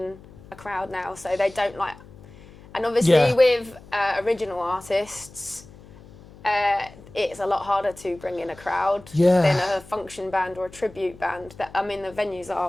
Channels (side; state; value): left; noise; hum, 21 dB below the sound